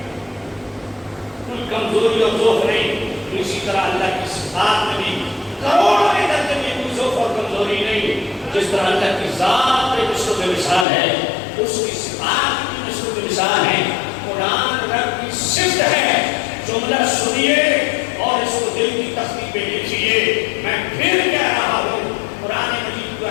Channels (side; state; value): right; drops out; at 10.9 s